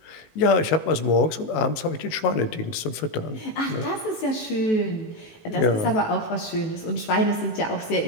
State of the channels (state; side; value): late; right; 18 ms